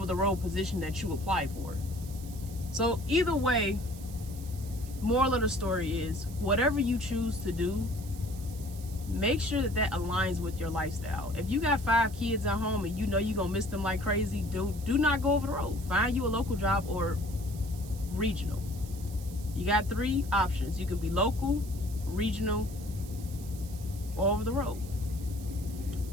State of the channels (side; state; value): right; noise; hiss, 18 dB below the sound